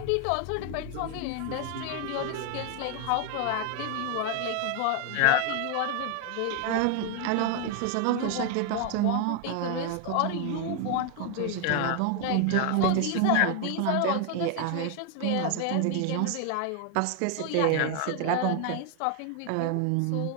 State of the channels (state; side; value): different; both; correlation 0.00